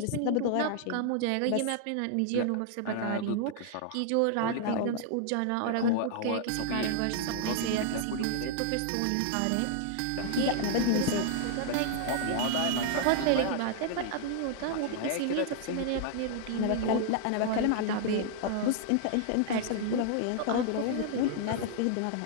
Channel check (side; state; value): both; different; correlation -0.01